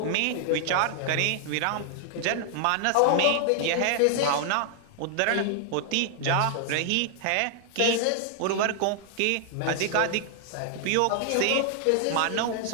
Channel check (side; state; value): both; different; correlation 0.00